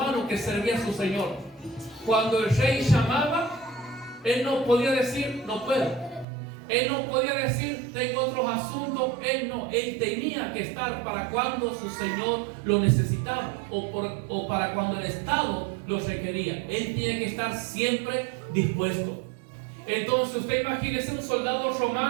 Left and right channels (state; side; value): drops out; left; at 6.2 s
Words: que servía a su Señor. Cuando el rey llamaba, él no podía decir: no puedo. Él no podía decir: tengo otros asuntos. Él tenía que estar para cuando su Señor lo necesitaba, o para cuando el Estado lo requería. Él tiene que estar siempre dispuesto. Entonces, usted imagínese un soldado